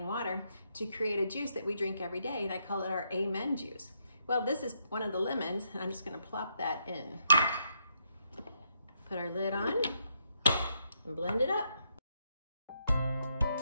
water to create a juice that we drink every day, and I call it our Amen juice. Well, this is one of the lemons, and I'm just gonna plop that in. Put our lid on and blend it up.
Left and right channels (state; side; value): inverted; both; correlation -0.77